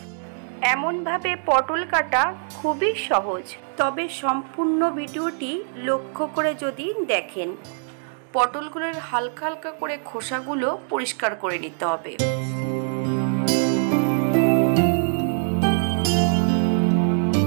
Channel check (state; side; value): silent; left; digital silence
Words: এমনভাবে পটল কাটা খুবই সহজ, তবে সম্পূর্ণ ভিডিওটি লক্ষ্য করে যদি দেখেন, পটলগুলোর হালকা হালকা করে খোসাগুলো পরিষ্কার করে নিতে হবে।